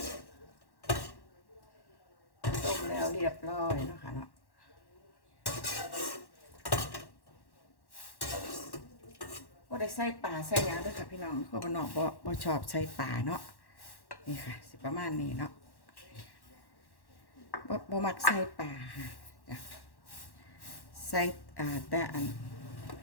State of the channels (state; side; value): late; right; 1.1 ms